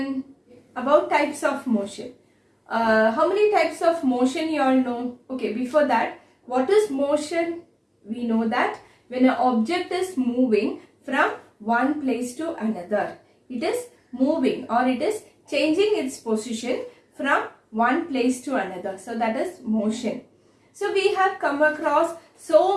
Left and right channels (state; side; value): identical; both; correlation 1.00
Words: About types of motion. How many types of motion you all know? Okay, before that, what is motion? We know that when an object is moving from one place to another, it is moving or it is changing its position from one place to another. So that is motion. So we have come across so